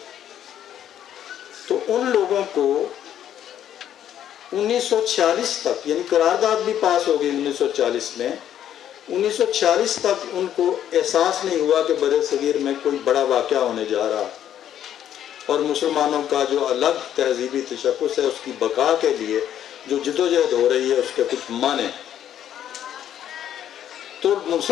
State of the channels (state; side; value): quieter; right; 10.5 dB